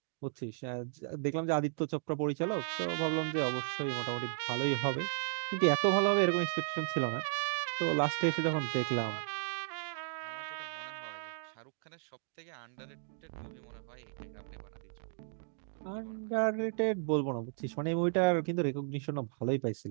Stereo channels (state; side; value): silent; left; digital silence